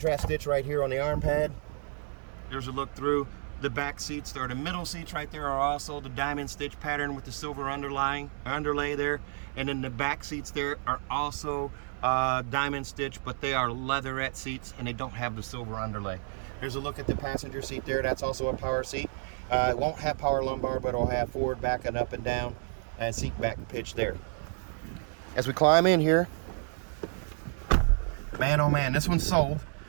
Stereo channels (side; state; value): left; silent; 57 dB below the other